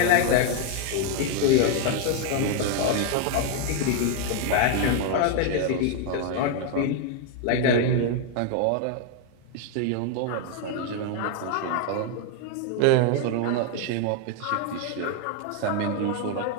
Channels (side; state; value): both; different; correlation 0.01